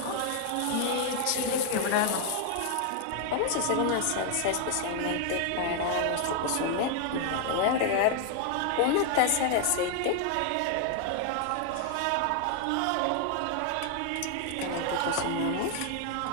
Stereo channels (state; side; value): different; both; correlation 0.00